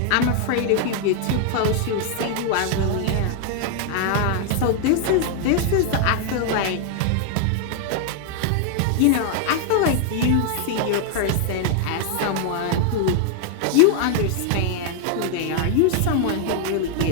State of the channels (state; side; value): different; both; correlation 0.00